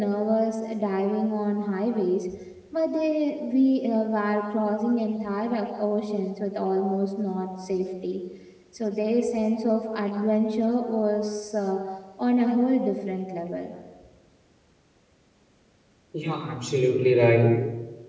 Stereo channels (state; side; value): identical; both; correlation 1.00